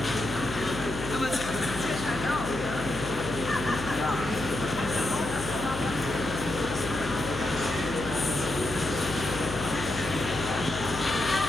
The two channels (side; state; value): left; noise; hum, 9 dB below the sound